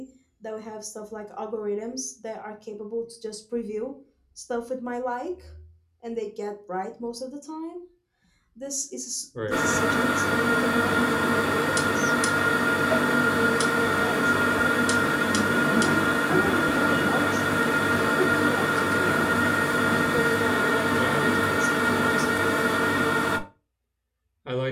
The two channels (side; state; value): both; identical; correlation 1.00